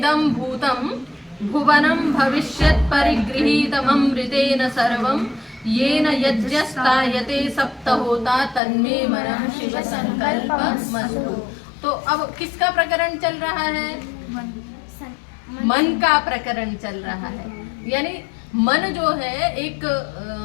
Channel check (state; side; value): drops out; right; at 8.6 s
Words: भूतम भुवनम भविष्यत् परिगृहीतममृतेन सर्वं येन यज्ञस्तायते सप्तहोता तन्मे मनः शिव संकल्पमस्तु। तो अब किसका प्रकरण चल रहा है? मन का प्रकरण चल रहा है। यानी मन जो है एक